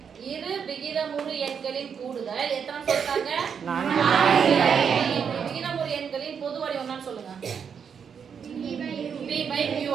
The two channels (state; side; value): quieter; left; 7.0 dB